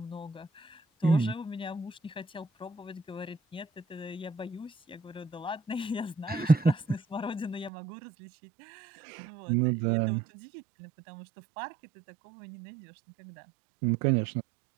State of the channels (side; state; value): left; drops out; at 7.7 s